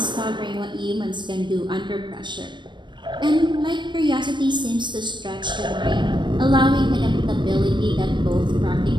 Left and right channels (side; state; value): left; late; 0.22 ms